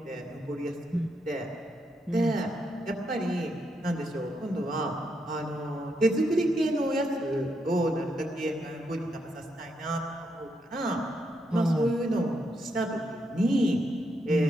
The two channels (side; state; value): both; normal; correlation 0.80